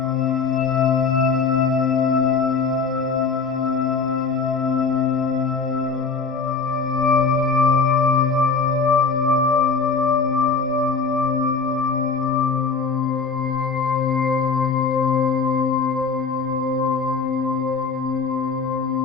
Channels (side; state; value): right; quieter; 4.8 dB